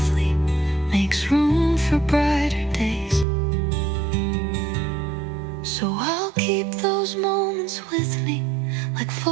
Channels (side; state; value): left; drops out; at 3.2 s